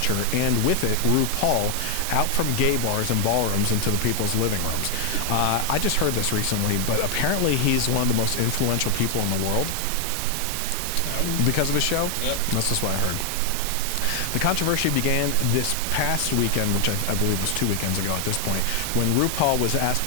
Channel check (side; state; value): both; different; correlation 0.00